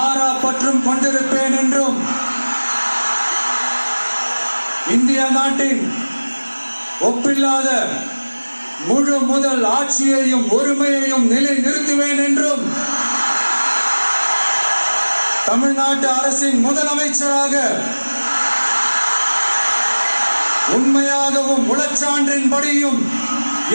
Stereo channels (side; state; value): both; inverted; correlation -1.00